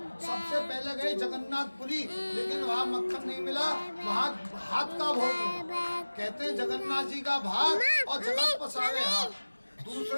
सबसे पहले गए जगन्नाथपुरी, लेकिन वहाँ मक्खन नहीं मिला, वहाँ भात का भोग मिला। कहते हैं जगन्नाथ जी का भात और जगत पसारे हाथ।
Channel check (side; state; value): both; inverted; correlation -1.00